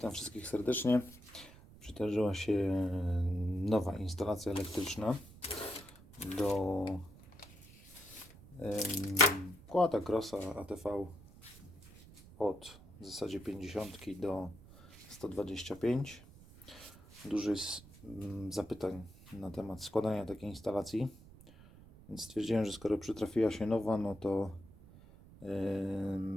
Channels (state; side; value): noise; right; rumble, 20 dB below the sound